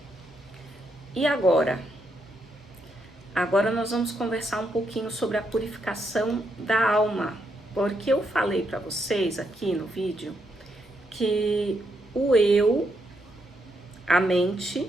E agora? Agora nós vamos conversar um pouquinho sobre a purificação da alma, porque eu falei para vocês aqui no vídeo que o eu, a mente,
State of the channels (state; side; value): normal; both; correlation 0.79